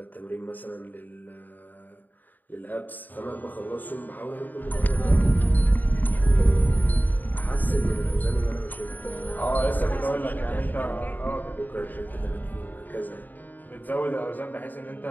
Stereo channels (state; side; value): late; right; 0.086 ms